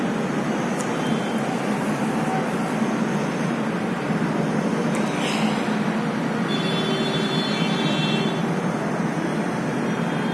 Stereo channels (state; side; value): identical; both; correlation 1.00